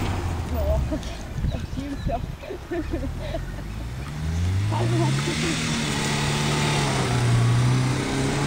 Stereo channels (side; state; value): both; identical; correlation 1.00